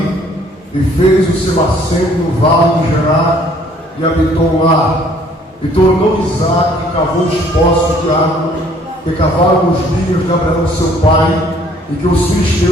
e fez o seu assento no vale de Gerar e habitou lá. E tornou Isaque e cavou os poços de água que cavaram nos dias de Abraão seu pai, e que os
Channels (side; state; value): both; normal; correlation 0.60